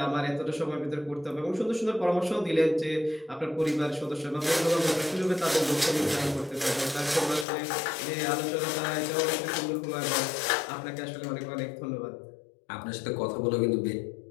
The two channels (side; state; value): right; drops out; at 7.5 s